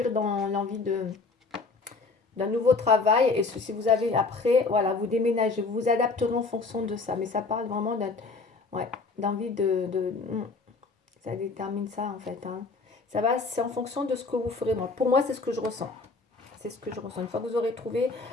dans l'envie d'un nouveau travail. Et si vous avez après, voilà, vous déménagez, vous vous adapterez en fonction de ça. Mais ça parle vraiment ouais, d'envie ça détermine ça en fait, hein. Ça va, c'est en fonction de ce que vous ferez. Pour moi, c'est ce que je ressens. C'est ce que je ressens. Une fois que vous aurez trouvé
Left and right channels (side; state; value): right; quieter; 4.0 dB